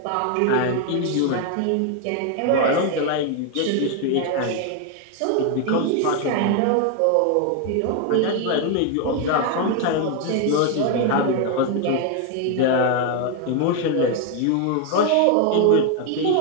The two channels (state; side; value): different; both; correlation 0.01